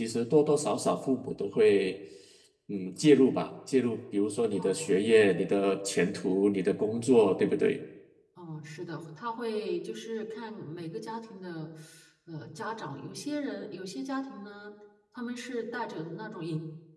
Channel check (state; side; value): identical; both; correlation 1.00